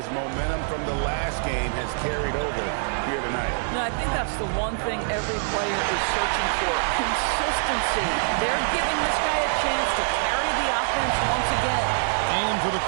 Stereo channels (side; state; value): left; silent; digital silence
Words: momentum from the last game has carried over here tonight. No, I think that's the one thing every player is searching for. Consistency. They're giving this guy a chance to carry the offense once again. And for the